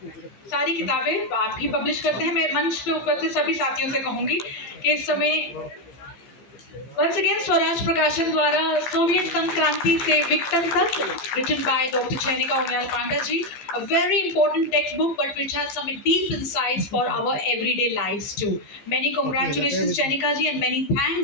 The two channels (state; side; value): late; right; 15 ms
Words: सारी किताबें आप ही पब्लिश करते हैं, मैं मंच पे ऊपर से सभी साथियों से कहूंगी कि इस समय Once again, स्वराज प्रकाशन द्वारा सोवियत संघ क्रांति से विघटन तक, written by Dr. Chenika Umayal Panda ji, a very important textbook, but which has some deep insights for our everyday lives too. Many congratulations, Chenika ji, and many